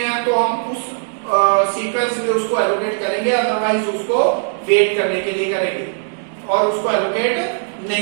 तो हम उस सीक्वेंस में उसको एलोकेट करेंगे, अदरवाइज उसको वेट करने के लिए करेंगे और उसको एलोकेट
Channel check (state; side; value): silent; left; 67 dB below the other